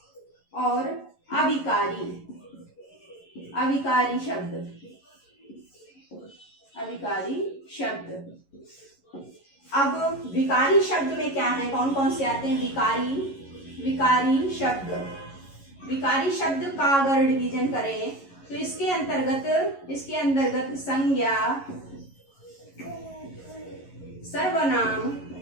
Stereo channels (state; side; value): late; right; 11 ms